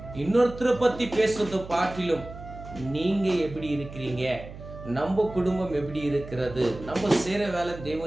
இன்னொருத்தரை பத்தி பேசுறதை பாட்டிலும் நீங்க எப்படி இருக்கிறீங்க, நம்ம குடும்பம் எப்படி இருக்கிறது, நம்ம செய்யற வேலை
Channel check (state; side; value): noise; right; hum, 14 dB below the sound